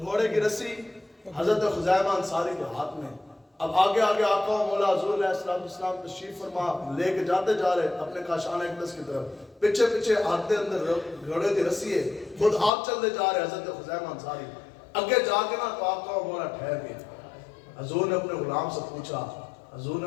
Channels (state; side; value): drops out; right; at 12.7 s